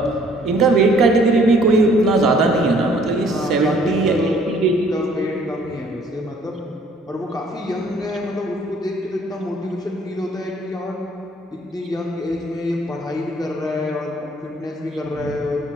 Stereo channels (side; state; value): both; normal; correlation 0.59